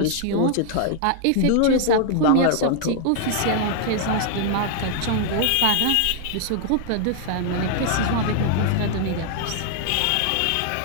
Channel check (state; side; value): different; both; correlation 0.00